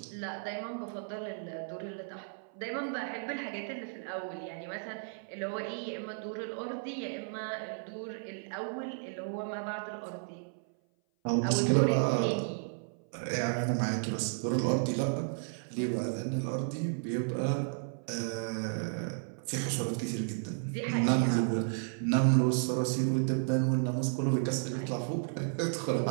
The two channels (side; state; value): left; silent; 56 dB below the other